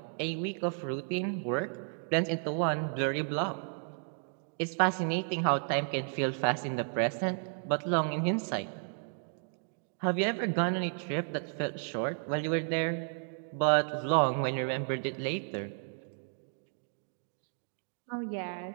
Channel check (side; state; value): left; silent; 56 dB below the other